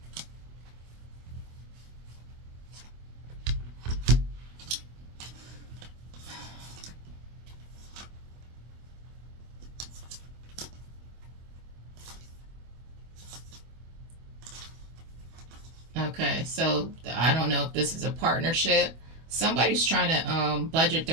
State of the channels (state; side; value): late; left; 25 ms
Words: Okay, so I don't know if this is a partnership. Somebody's trying to budget